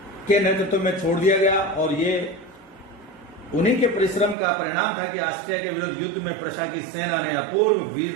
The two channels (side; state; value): left; drops out; at 4.4 s